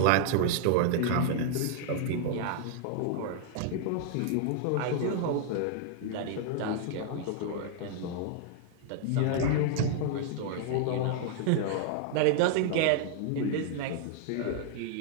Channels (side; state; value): both; different; correlation -0.01